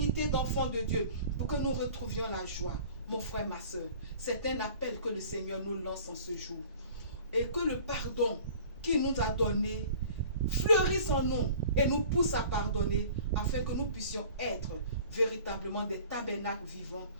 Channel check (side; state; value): both; inverted; correlation -0.46